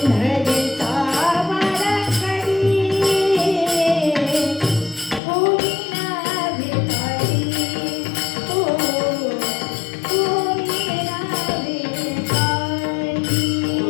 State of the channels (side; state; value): right; drops out; at 5.2 s